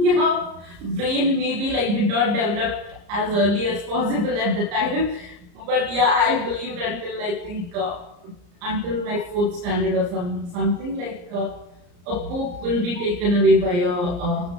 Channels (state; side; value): late; left; 34 ms